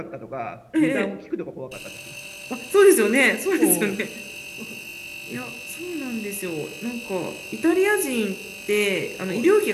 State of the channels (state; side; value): identical; both; correlation 1.00